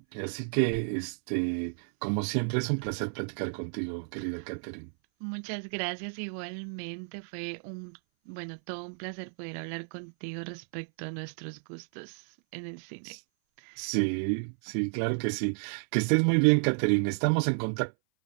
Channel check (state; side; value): silent; left; 57 dB below the other